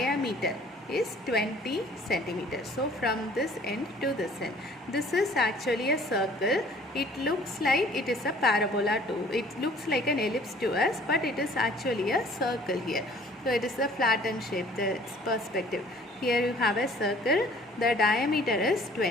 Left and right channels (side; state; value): both; normal; correlation 0.53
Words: is 20 centimeters. So from this end to this end, this is actually a circle. It looks like it is a parabola too. It looks like an ellipse to us, but it is actually a circle here. So it is a flattened shape, the perspective. Here you have a circle. The diameter is